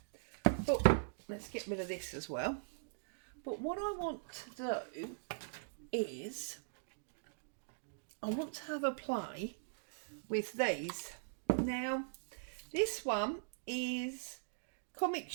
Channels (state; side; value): silent; left; digital silence